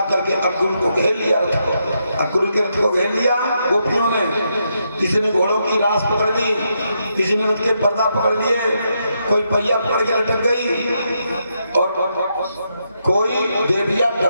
के अक्रूर को घेर लिया, रथ को, अक्रूर के रथ को घेर लिया गोपियों ने। किसी ने घोड़ों की रास पकड़ ली, किसी ने रथ के पर्दा पकड़ लिए, कोई पहिया पकड़ के लटक गई और कोई देविया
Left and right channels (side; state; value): both; inverted; correlation -0.81